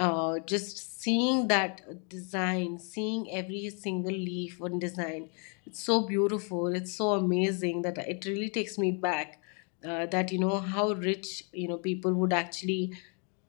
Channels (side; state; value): right; quieter; 38.1 dB